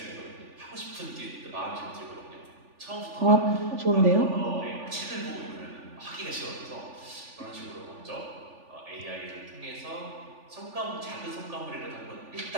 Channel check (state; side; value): late; left; 3.4 ms